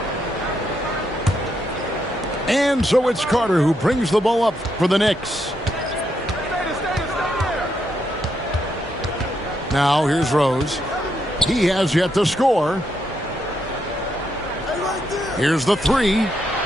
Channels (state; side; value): normal; both; correlation 0.79